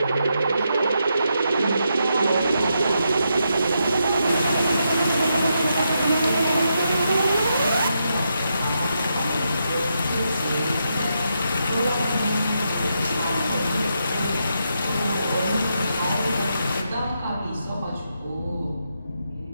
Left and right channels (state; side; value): inverted; both; correlation -0.83